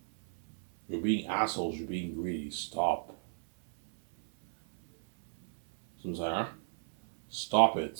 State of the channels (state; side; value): silent; left; 56 dB below the other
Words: You're being assholes. You're being greedy. Stop. So I'm saying, huh? Stop